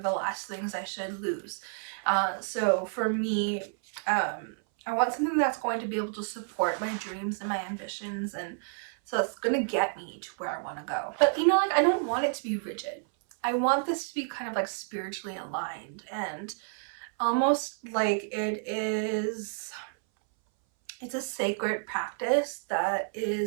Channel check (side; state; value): left; silent; 58 dB below the other